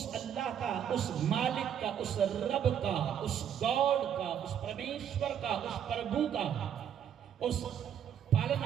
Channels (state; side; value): quieter; left; 9.1 dB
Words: اللہ کا، اس مالک کا، اس رب کا، اس گاڈ کا، اس پرمیشور کا، اس پربھو کا، اس